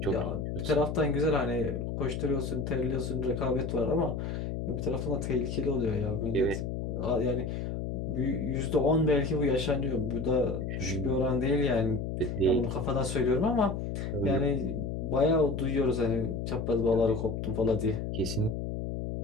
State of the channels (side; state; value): left; noise; hum, 4 dB below the sound